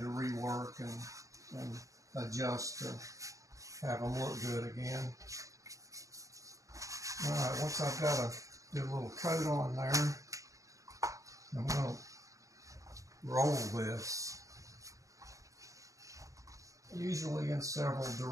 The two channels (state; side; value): late; left; 0.16 ms